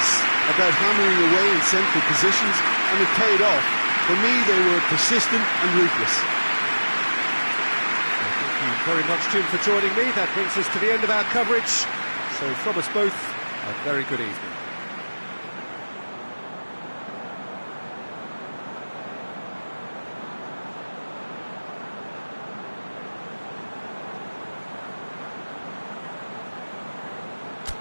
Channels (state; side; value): inverted; both; correlation -1.00